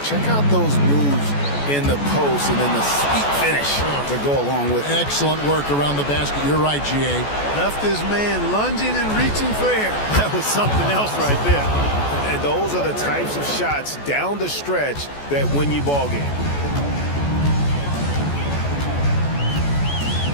Check out those moves in the post and then the sweet finish to go along with it. Excellent work around the basket. You're right, G.A. Left his man lunging and reaching for air. That was something else right there. And those are the types of shots down the stretch that win you ball game.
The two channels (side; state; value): right; late; 14 ms